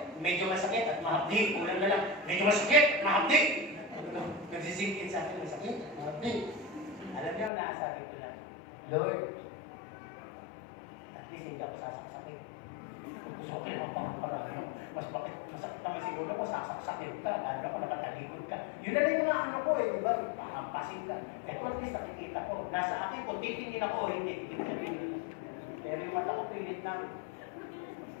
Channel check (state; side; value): drops out; right; at 7.5 s